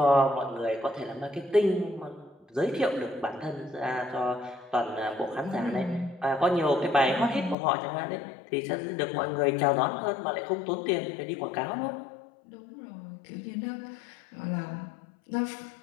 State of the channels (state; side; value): drops out; right; at 7.6 s